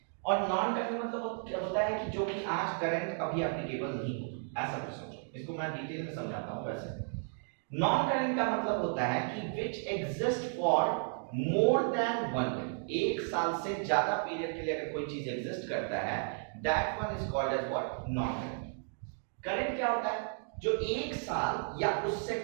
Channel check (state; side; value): silent; left; 55 dB below the other